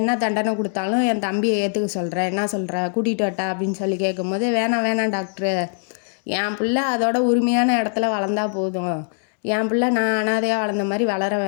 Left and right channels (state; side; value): silent; right; 61 dB below the other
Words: தண்டனை கொடுத்தாலும் என் தம்பியை ஏற்றுக்க சொல்கிறேன், என்ன சொல்கிற, கூட்டிகிட்டு வட்டா அப்படின்னு சொல்லி கேட்கும்போது, வேணாம் டாக்டரு, என் பிள்ளை அதோட உரிமையான இடத்துல வளர்ந்தா போதும், என் பிள்ளை நான் அனாதையாக வளர்ந்த மாதிரி வளர